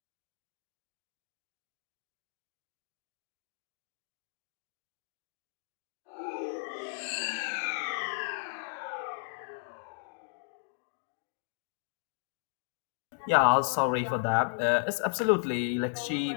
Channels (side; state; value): right; silent; digital silence